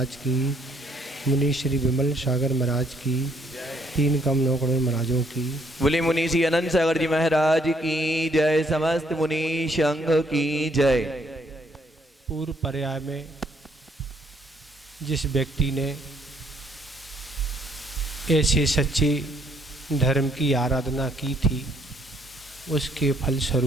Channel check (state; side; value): normal; both; correlation 0.68